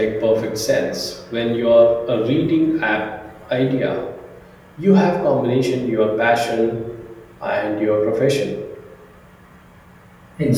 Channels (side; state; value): both; identical; correlation 1.00